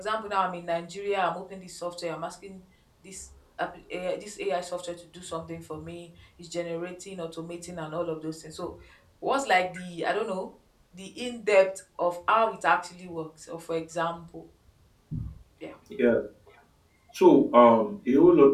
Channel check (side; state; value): both; identical; correlation 1.00